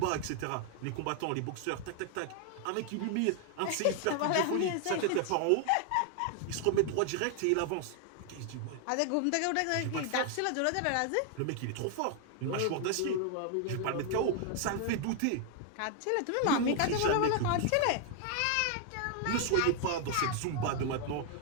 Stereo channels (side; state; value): both; different; correlation 0.00